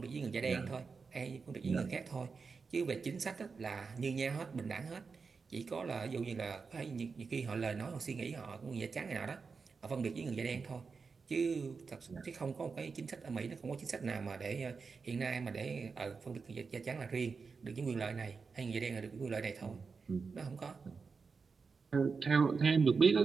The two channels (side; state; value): left; quieter; 5.0 dB